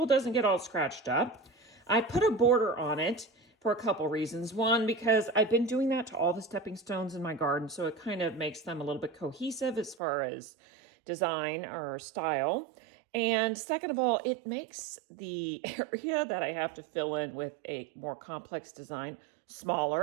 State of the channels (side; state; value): left; drops out; at 10.0 s